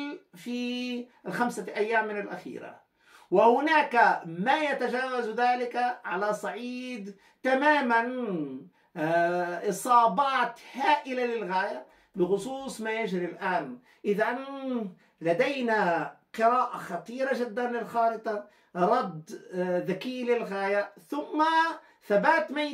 في ال5 أيام من الأخيرة، وهناك ما يتجاوز ذلك على صعيد تماما إصابات هائلة للغاية بخصوص ما يجري الآن. إذا لدينا قراءة خطيرة جدا للخارطة، رد ذكي للغاية، ثم ثبات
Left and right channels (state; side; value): identical; both; correlation 1.00